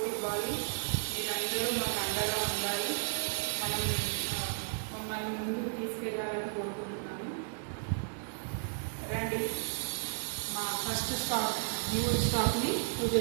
ఇవ్వాలి, మీరందరూ మాకు అండగా ఉండాలి, మమ్మల్ని ముందుకు తీసుకెళ్ళాలని కోరుకుంటున్నాను. రండి, మా ఫస్ట్ న్యూ స్టాక్ని పూజ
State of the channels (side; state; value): left; silent; digital silence